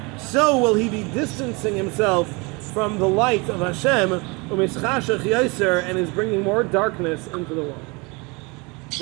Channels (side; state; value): left; quieter; 27.9 dB